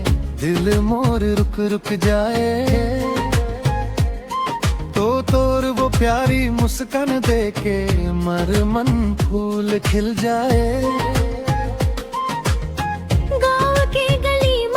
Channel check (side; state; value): both; identical; correlation 1.00